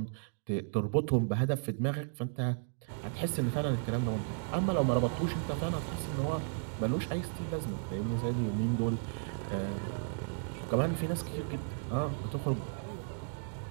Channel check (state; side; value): silent; left; digital silence